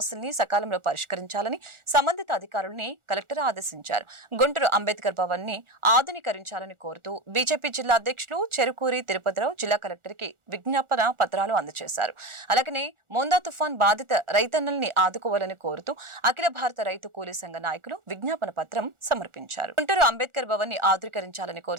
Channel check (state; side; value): late; left; 1.4 ms